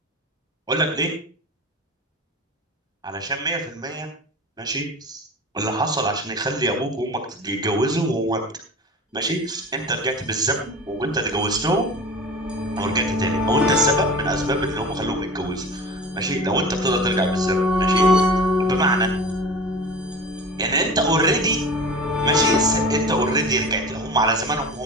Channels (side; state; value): both; normal; correlation 0.35